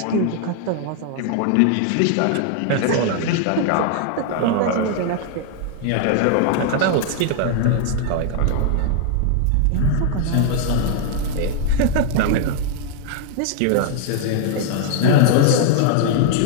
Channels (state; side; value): different; both; correlation 0.00